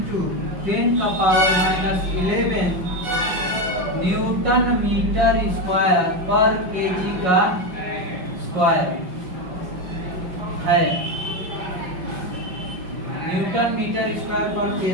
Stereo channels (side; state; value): left; late; 5.5 ms